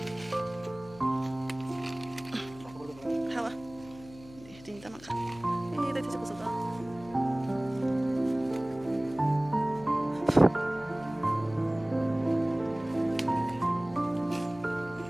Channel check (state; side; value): noise; left; hum, 20 dB below the sound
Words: 하와. 진짜 많다. 내 뒤집어 써봐.